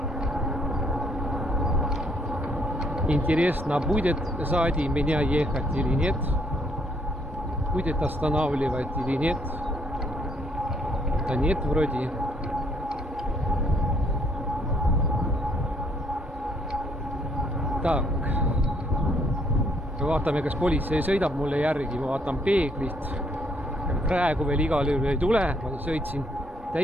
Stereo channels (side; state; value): both; normal; correlation 0.67